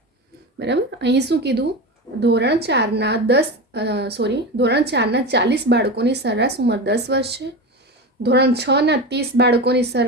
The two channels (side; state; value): both; normal; correlation 0.24